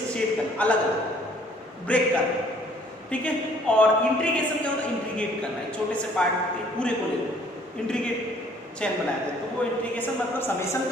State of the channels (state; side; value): normal; both; correlation 0.59